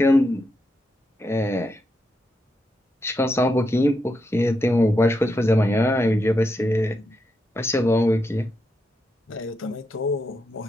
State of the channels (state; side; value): normal; both; correlation 0.83